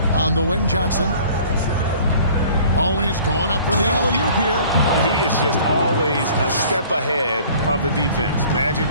On the wing, Johnson. Oh, he's going up for the alley-oop here. He is just always a step ahead of the defense. Magic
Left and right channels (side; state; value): both; inverted; correlation -0.50